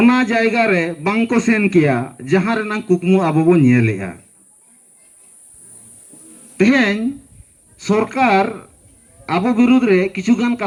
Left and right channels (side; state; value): both; identical; correlation 1.00